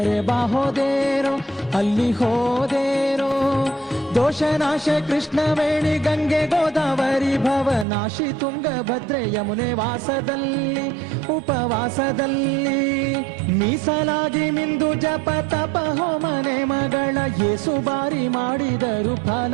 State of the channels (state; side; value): drops out; left; at 7.9 s